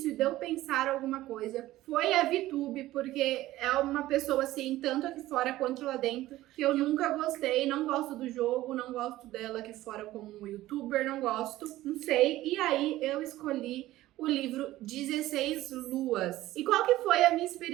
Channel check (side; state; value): left; quieter; 15.9 dB